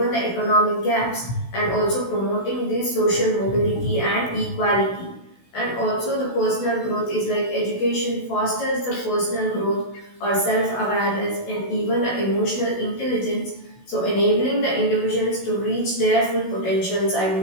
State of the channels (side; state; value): right; late; 16 ms